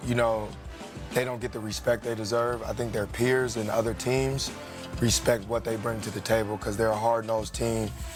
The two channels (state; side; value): identical; both; correlation 1.00